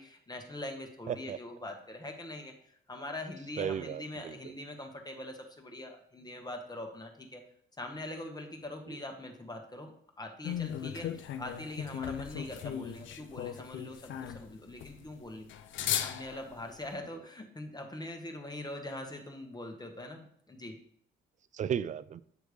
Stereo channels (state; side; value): normal; both; correlation 0.34